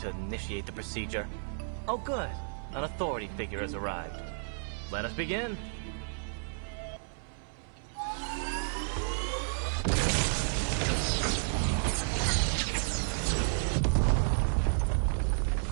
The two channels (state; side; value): silent; left; 56 dB below the other